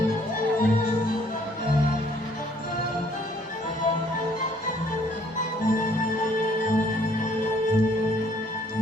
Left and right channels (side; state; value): both; normal; correlation 0.62